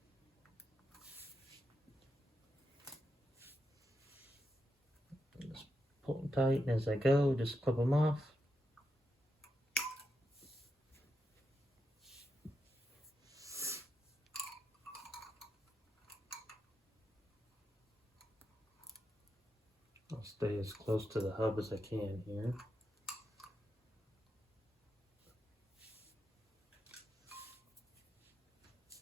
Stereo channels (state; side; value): normal; both; correlation 0.85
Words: just pull them tight, and as I go, just clip them off. I'll stay as close to the hub as I can here.